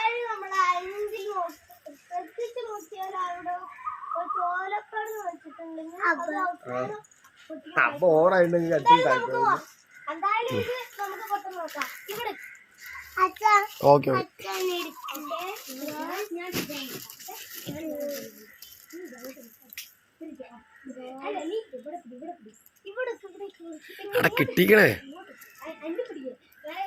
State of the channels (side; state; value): both; identical; correlation 1.00